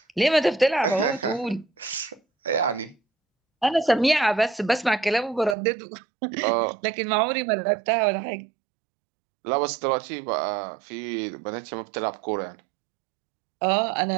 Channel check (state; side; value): drops out; left; at 5.6 s